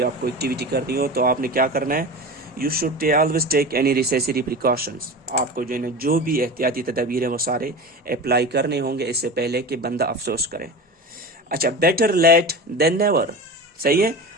आपको एक्टिविटी करनी हो, तो आपने क्या करना है? You should always take any necessary precautions. आपको जो है ना जो भी एहतियाती तदबीर है वो सारे अप्लाई करने होंगे इससे पहले कि बंदा अफसोस करे। अच्छा, बेटर लेट देन नेवर। सही है।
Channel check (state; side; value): normal; both; correlation 0.29